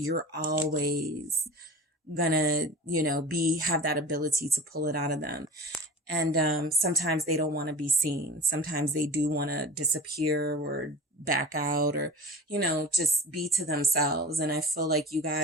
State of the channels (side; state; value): both; normal; correlation 0.36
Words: always gonna, have that ability to pull it out of them. And sometimes they don't want to be seen. Sometimes they do want to disappear or back out or, just be to themselves. And I feel like you